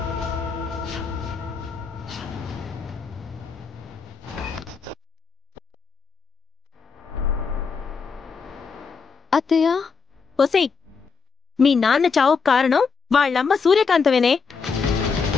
అత్తయ్య, ఒసేయ్, మీ నాన్న చావు కారణం వాళ్ళమ్మ సూర్యకాంతమేనే.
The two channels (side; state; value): right; quieter; 5.4 dB